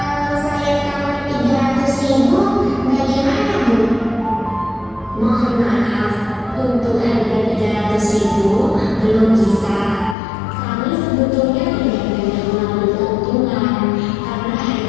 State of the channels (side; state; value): right; drops out; at 10.2 s